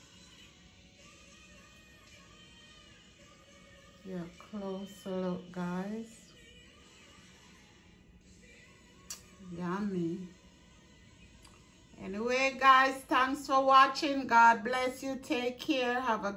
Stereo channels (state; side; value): identical; both; correlation 1.00